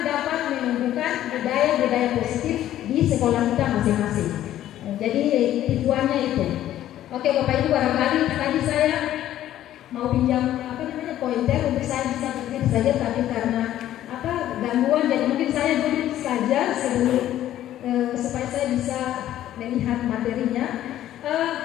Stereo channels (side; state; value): right; quieter; 12.6 dB